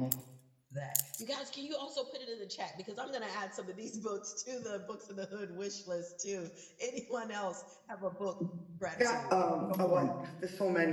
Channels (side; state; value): both; identical; correlation 1.00